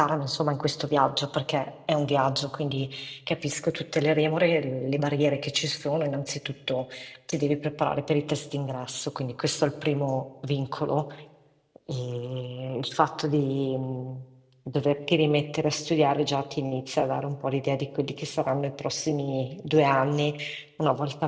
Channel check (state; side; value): identical; both; correlation 1.00